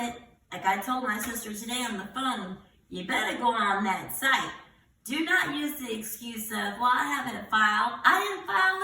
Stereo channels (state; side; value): identical; both; correlation 1.00